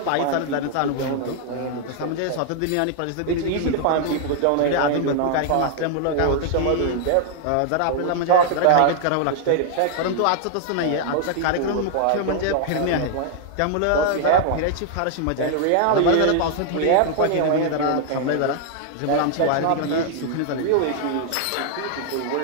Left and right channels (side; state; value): both; different; correlation 0.00